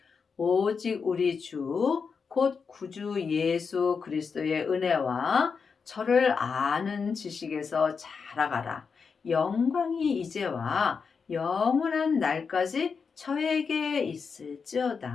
오직 우리 주, 곧 구주 예수 그리스도의 은혜와 저를 아는 지식에서 자라가라. 영광이 이제와 영원한 날까지 저에게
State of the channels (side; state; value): right; quieter; 5.6 dB